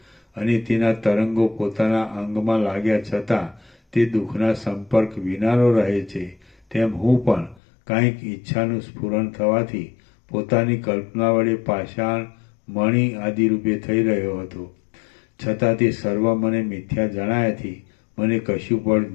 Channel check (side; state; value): right; drops out; at 7.6 s